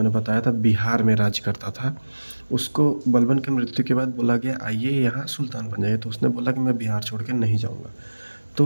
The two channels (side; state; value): both; inverted; correlation -1.00